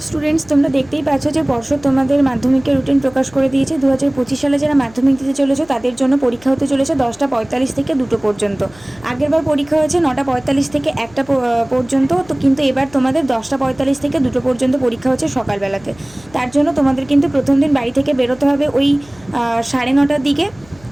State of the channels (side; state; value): left; noise; hum, 25 dB below the sound